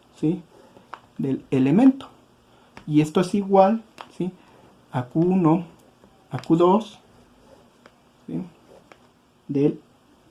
¿sí? Del elemento. Y esto es igual, ¿sí? A Q1, a Q2, ¿sí? Del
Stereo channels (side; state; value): both; identical; correlation 1.00